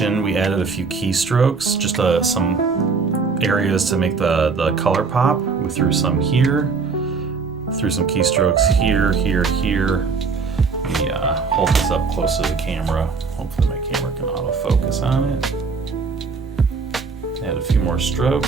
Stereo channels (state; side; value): quieter; left; 4.9 dB